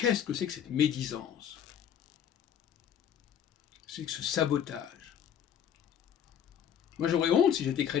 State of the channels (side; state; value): right; quieter; 9.1 dB